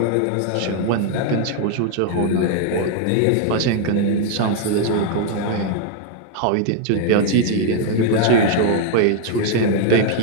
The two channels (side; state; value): both; different; correlation 0.00